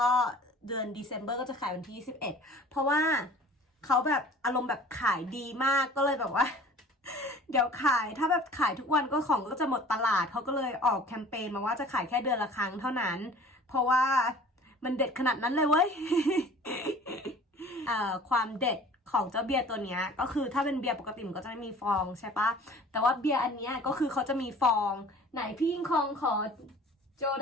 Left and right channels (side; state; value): both; normal; correlation 0.46